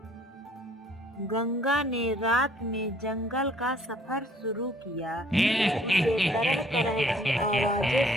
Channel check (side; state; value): both; normal; correlation 0.59